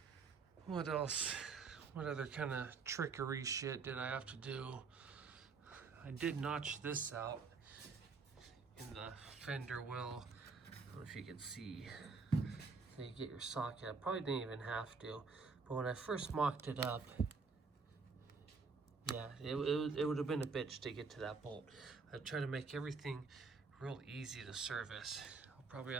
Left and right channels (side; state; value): left; quieter; 4.7 dB